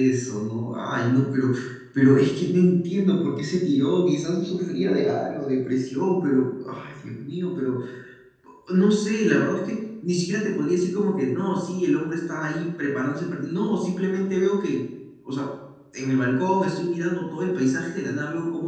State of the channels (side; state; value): both; identical; correlation 1.00